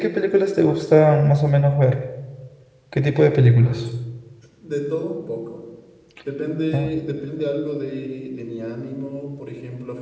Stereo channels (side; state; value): both; identical; correlation 1.00